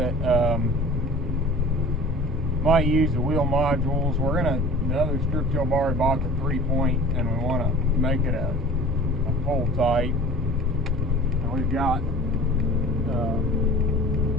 Might use the wheel modules. The other strip till bar we bought the 3-point, and we want to make it a full tight. And we've got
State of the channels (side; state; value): both; normal; correlation 0.42